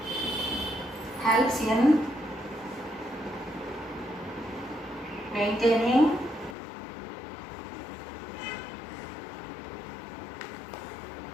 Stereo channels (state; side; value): drops out; right; at 6.6 s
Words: helps in maintaining